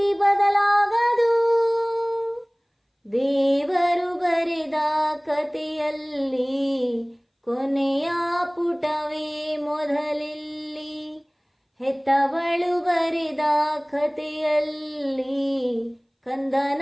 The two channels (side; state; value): both; identical; correlation 1.00